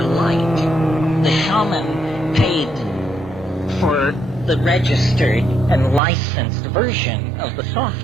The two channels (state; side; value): drops out; left; at 6.0 s